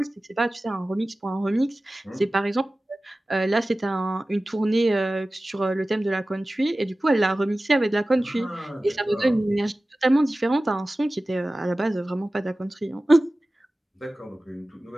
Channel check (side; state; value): both; normal; correlation 0.97